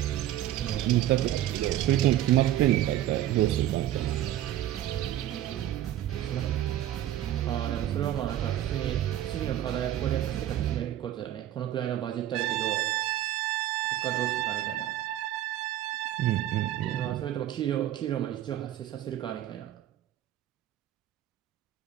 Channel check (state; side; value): quieter; left; 12.8 dB